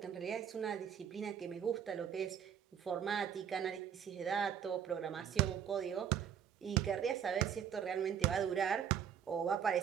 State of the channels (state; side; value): quieter; left; 8.5 dB